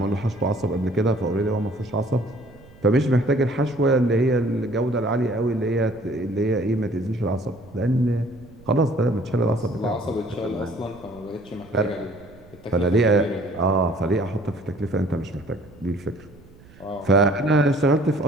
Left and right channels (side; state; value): right; noise; rumble, 23 dB below the sound